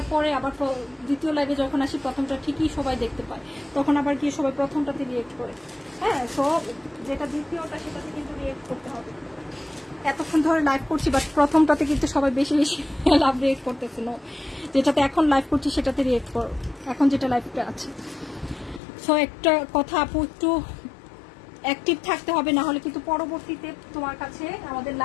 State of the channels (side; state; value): right; drops out; at 18.8 s